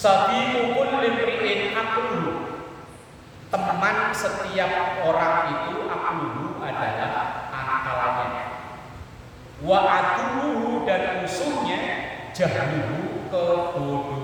kulli imri'in aqluhu, teman setiap orang itu aqluhu adalah akalnya. Wa aduhu, dan musuhnya jahluhu,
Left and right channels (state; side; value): identical; both; correlation 1.00